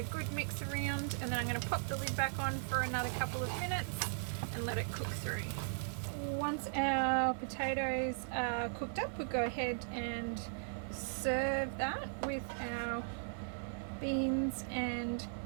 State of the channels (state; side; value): silent; left; digital silence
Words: good mix around, and then I'm going to pop the lid back on for another couple of minutes and let it cook through. Once our potatoes are cooked up, we'll go ahead and serve that with our beans and